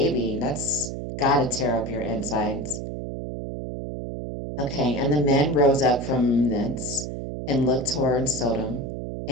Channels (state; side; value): noise; right; hum, 6 dB below the sound